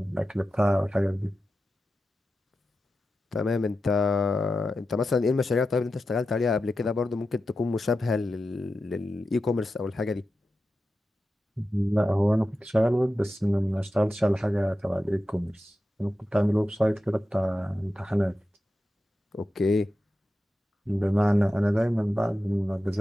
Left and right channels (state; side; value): normal; both; correlation 0.91